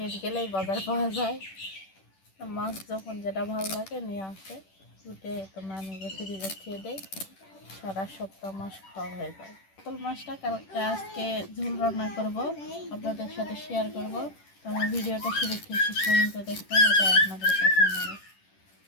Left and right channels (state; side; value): late; right; 10 ms